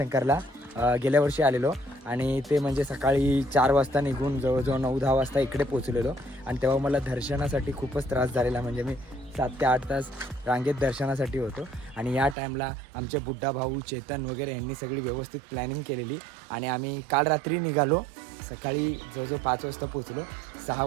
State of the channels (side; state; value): left; drops out; at 12.4 s